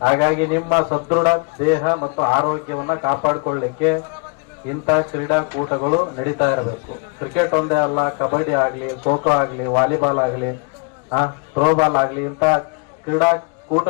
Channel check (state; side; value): quieter; right; 32.7 dB